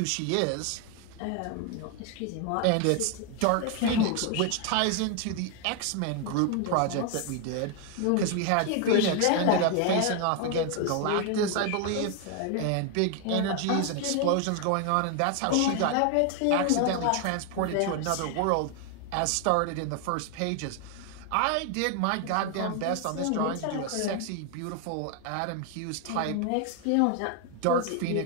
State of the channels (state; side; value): different; both; correlation 0.01